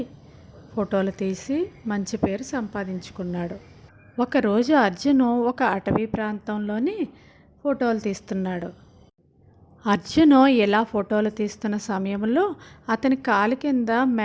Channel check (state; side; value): identical; both; correlation 1.00